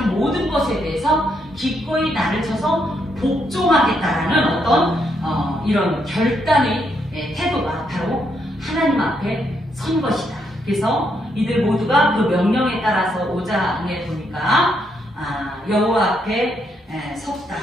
모든 것에 대해서 기꺼이 나를 쳐서 복종하겠다라는 어떤 이런 결단의 태도가 바로 하나님 앞에 선 것이다. 그래서 이들 모두가 그 명령에 따라서 5장에 보니까 여호와 앞에 섰다.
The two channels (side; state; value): both; normal; correlation 0.77